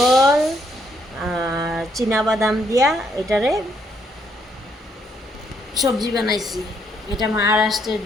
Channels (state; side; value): normal; both; correlation 0.72